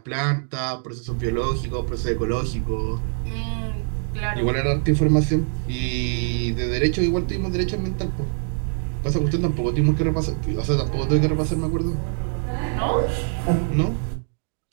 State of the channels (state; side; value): silent; left; digital silence